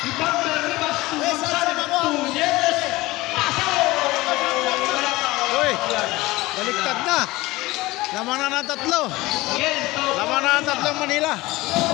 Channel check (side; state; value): right; quieter; 19.9 dB